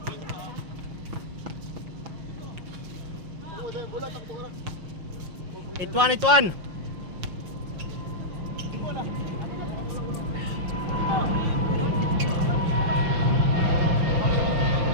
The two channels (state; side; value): late; left; 5.7 ms